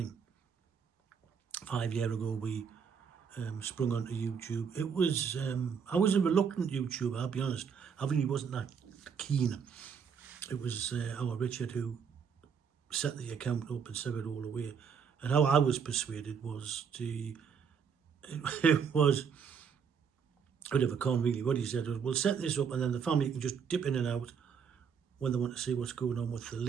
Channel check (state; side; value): quieter; left; 6.7 dB